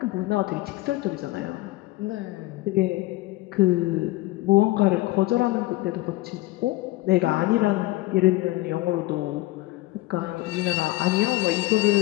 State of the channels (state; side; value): quieter; right; 19.1 dB